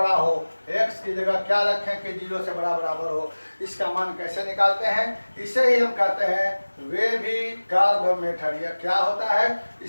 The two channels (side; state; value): both; inverted; correlation -1.00